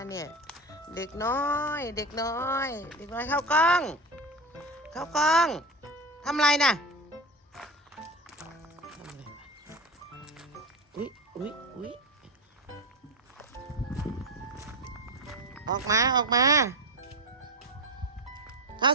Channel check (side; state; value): both; normal; correlation 0.21